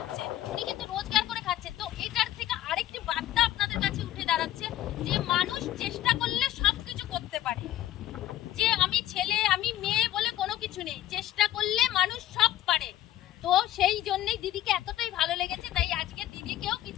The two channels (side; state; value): right; quieter; 13.6 dB